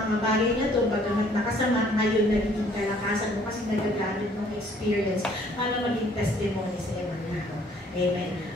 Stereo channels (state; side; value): normal; both; correlation 0.60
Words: bagay na ito, bagamat nakasama, ngayon nagiging kalakasan mo kasi nagagamit ng experience para maging testimony sa ibang tao. Amen.